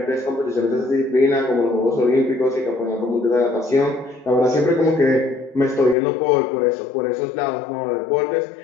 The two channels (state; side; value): drops out; right; at 6.0 s